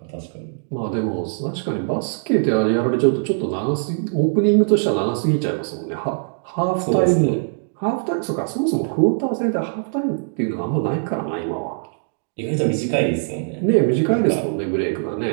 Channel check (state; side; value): silent; left; digital silence